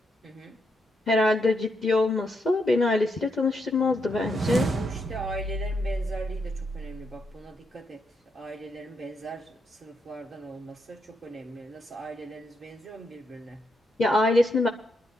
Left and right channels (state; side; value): normal; both; correlation 0.80